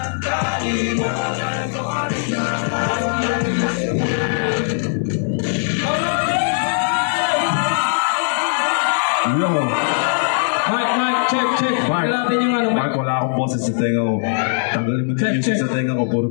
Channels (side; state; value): right; silent; digital silence